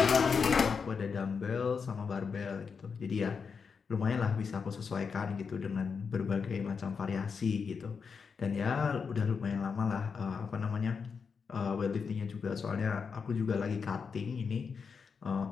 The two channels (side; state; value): right; quieter; 5.7 dB